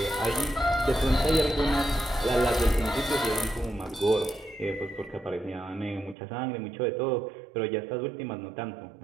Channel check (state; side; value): drops out; left; at 6.2 s